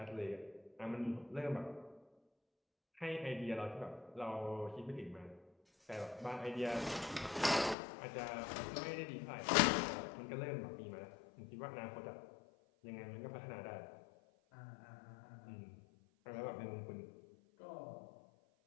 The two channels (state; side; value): drops out; right; at 7.8 s